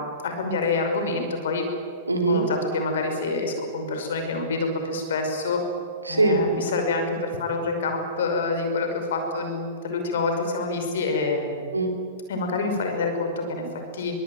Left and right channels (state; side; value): inverted; both; correlation -0.38